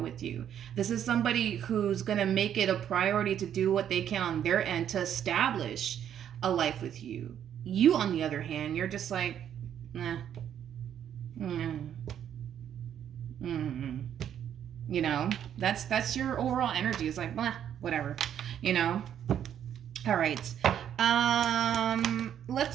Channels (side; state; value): left; quieter; 9.7 dB